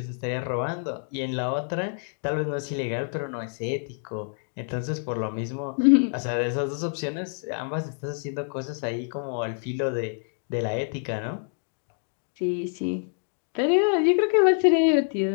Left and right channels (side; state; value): right; silent; 60 dB below the other